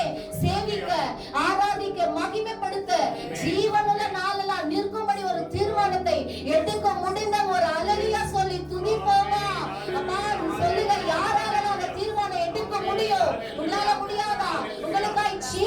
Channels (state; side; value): identical; both; correlation 1.00